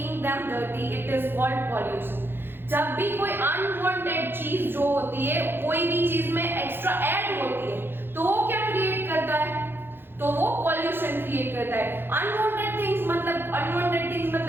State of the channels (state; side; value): late; left; 0.10 ms